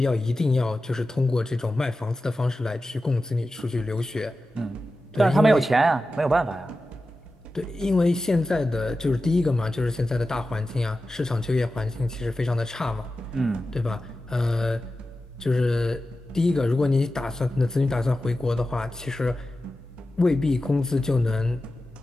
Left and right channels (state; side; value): normal; both; correlation 0.93